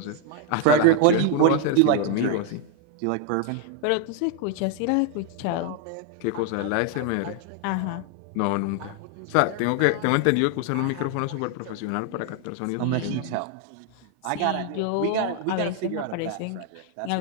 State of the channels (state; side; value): different; both; correlation 0.01